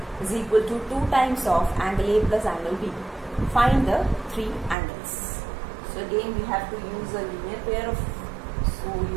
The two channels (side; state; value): left; drops out; at 4.8 s